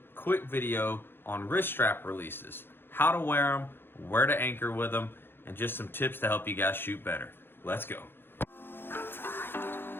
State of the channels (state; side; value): late; right; 0.10 ms